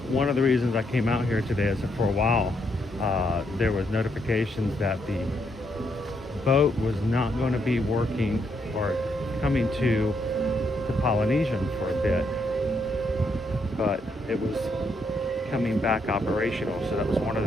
of the reasons I came out here today is that for a while there was notifications that the boat was not going to be working or coming to the Polynesian for a bit, but it was coming back operational. So that was one of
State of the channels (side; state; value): both; normal; correlation 0.76